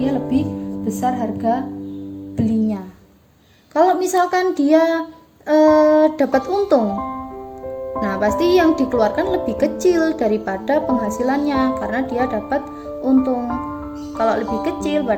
lebih besar harga belinya. Kalau misalkan dia dapat untung, nah pasti yang dikeluarkan lebih kecil daripada penghasilannya karena dia dapat untung. Kalau lebih kecil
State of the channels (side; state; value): both; identical; correlation 1.00